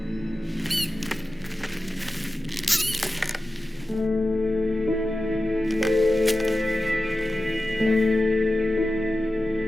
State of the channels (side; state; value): both; normal; correlation 0.93